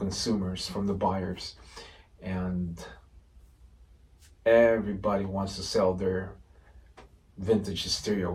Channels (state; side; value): identical; both; correlation 1.00